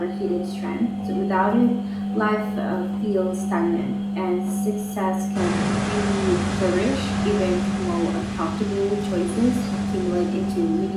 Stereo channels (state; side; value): identical; both; correlation 1.00